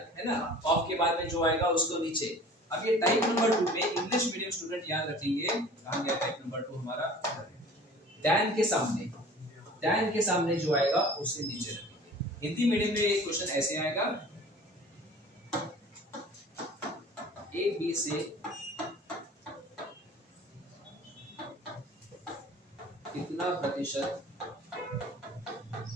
है ना, ऑफ के बाद में जो आएगा उसको नीचे। अब ये टाइप नंबर 2 में इंग्लिश मीडियम स्टूडेंट याद रखेंगे, कहां गया टाइप नंबर 2 हमारा? दैन के सामने, दैन के सामने जो आएगा उसे नीचे रखेंगे। हिंदी मीडियम में एक क्वेश्चन ऐसे आएगा, ए बी से कितना प्रतिशत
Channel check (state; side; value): normal; both; correlation 0.45